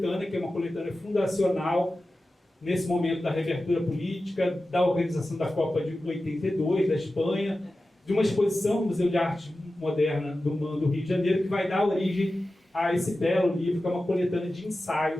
que é uma coletânea fundacional, nesse momento da reabertura política, da organização da Copa de 82, da Espanha, de uma exposição no Museu de Arte Moderna do MAN do Rio de Janeiro, que vai dar origem a esse belo livro, que é uma coletânea de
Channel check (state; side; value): normal; both; correlation 0.94